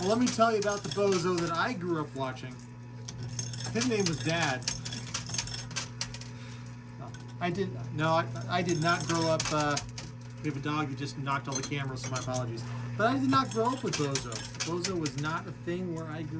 Well, let me tell you about the Bozo that I grew up watching. His name was Dad. I did not grow up. We have a dog who just knocked all the cameras, so my apologies. But I did not grow up with Bozo. Bozo was not a thing where I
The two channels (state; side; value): identical; both; correlation 1.00